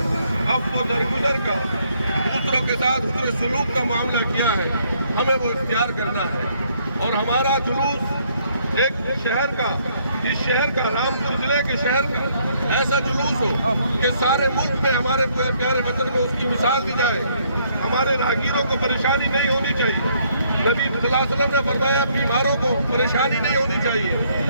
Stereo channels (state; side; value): inverted; both; correlation -0.68